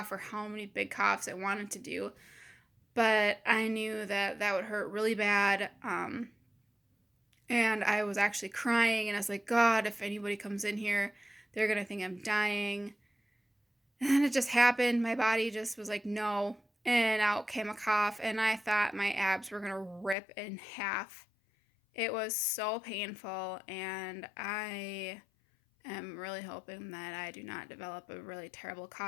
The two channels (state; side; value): drops out; right; at 20.2 s